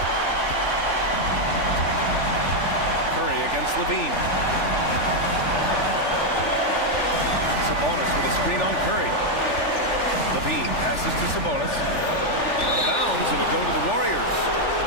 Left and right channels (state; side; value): late; right; 3.4 ms